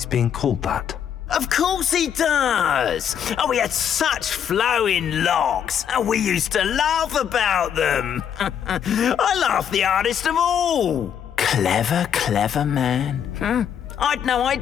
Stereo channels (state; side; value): quieter; right; 8.6 dB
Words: being called that. Of course he does. Oh, he had such flowing locks, and we used to laugh about them. I laughed the hardest of all. Clever, clever man. I'd no